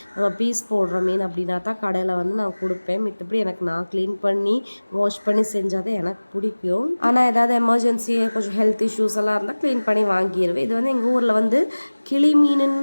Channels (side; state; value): both; inverted; correlation -1.00